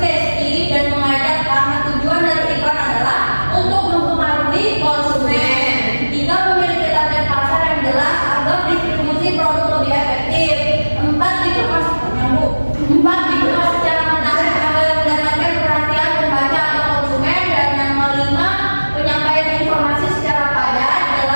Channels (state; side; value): inverted; both; correlation -1.00